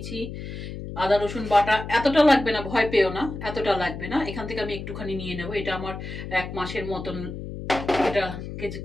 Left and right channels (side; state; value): left; noise; hum, 9 dB below the sound